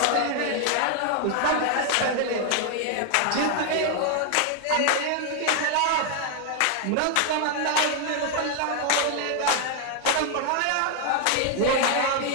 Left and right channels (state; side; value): different; both; correlation 0.00